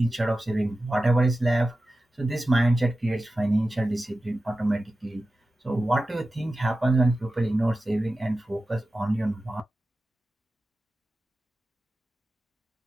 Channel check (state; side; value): normal; both; correlation 0.94